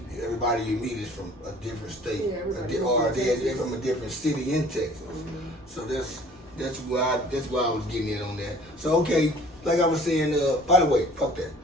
everybody you meet is from a different state, or they're from a different city in Texas. So that's why I was getting in on that. So okay, like I was saying, by the way, fuck that.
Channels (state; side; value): normal; both; correlation 0.51